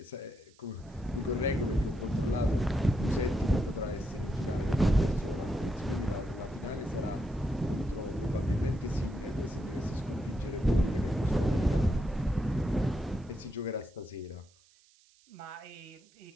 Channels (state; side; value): noise; right; hiss, 30 dB below the sound